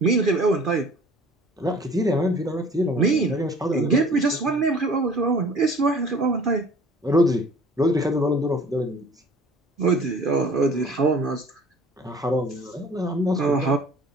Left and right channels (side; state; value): both; normal; correlation 0.49